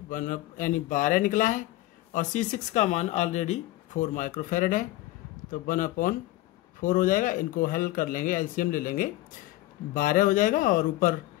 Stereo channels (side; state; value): right; quieter; 17.0 dB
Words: यानी 12 निकला है और C6 का मान ऑलरेडी 4 माइक्रोफैरड है। तो 1/4 हो जाएगा, इनको हल कर लेंगे, एलसीएम ले लेंगे, 12 हो जाएगा और ऊपर